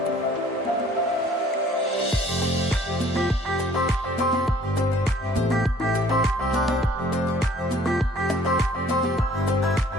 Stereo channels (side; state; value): both; normal; correlation 0.56